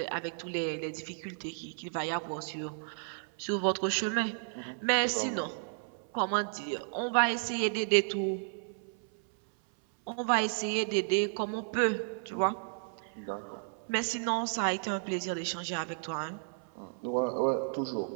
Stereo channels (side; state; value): left; silent; 56 dB below the other